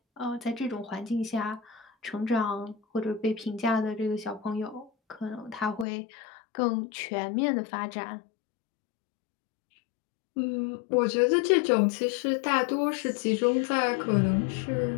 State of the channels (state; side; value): drops out; right; at 5.9 s